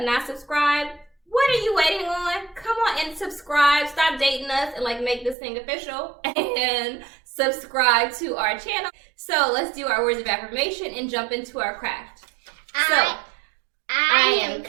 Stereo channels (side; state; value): left; drops out; at 5.4 s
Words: not subscribed, what are you waiting on? Come on and subscribe. Stop dating us and make this thing official and subscribe to our channel. So let's do our words of affirmation and jump into our craft. I am